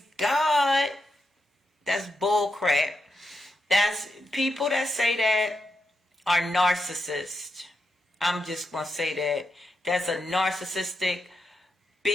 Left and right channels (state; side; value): normal; both; correlation 0.85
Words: God. That's bull crap. That's people that say that are narcissists. I'm just going to say that. That's a narcissistic,